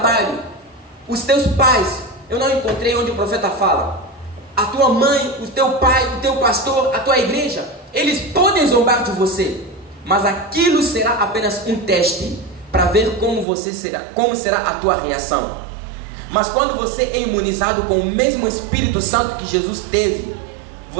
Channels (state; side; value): drops out; left; at 13.5 s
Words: Os teus pais, eu não encontrei onde o profeta fala, a tua mãe, o teu pai, o teu pastor, a tua igreja, eles podem zombar de você, mas aquilo será apenas um teste para ver como será a tua reação. Mas quando você é imunizado com o mesmo Espírito Santo que Jesus teve,